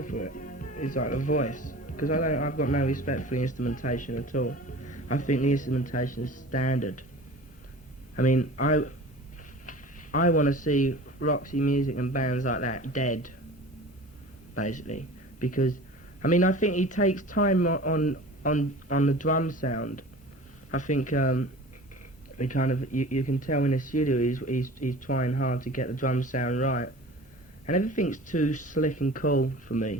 for it. It's like the voice. Because I've got no respect for the instrumentation at all. I think the instrumentation is standard. I mean, I want to see Roxy Music and bands like that dead, basically, because I mean I think he takes time on the drum sound. I think he kind of you can tell in the studio he's trying hard to get the drum sound right, and everything's too slick and cool for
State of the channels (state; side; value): normal; both; correlation 0.40